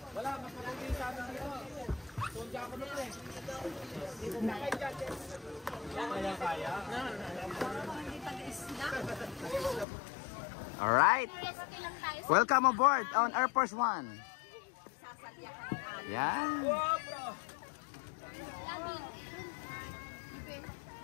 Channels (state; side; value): drops out; right; at 9.9 s